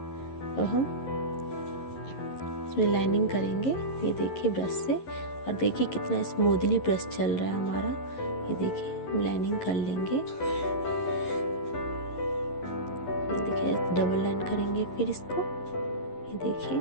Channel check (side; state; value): right; late; 11 ms